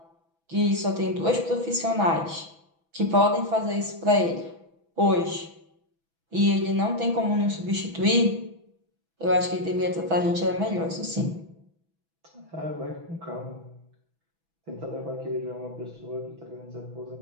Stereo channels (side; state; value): left; late; 6.1 ms